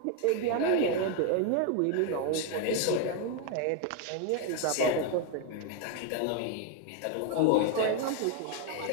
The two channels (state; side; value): different; both; correlation 0.01